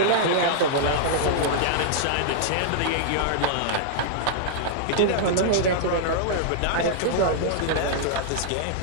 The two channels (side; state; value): both; different; correlation -0.01